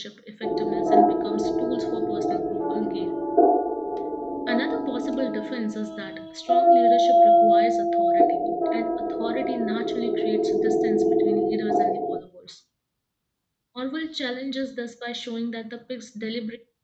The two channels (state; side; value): identical; both; correlation 1.00